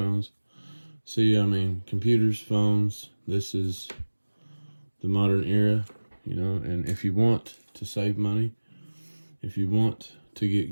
See, I mean, computers, phones, this is the modern era, you know, and if you want to save money, if you want to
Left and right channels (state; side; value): inverted; both; correlation -1.00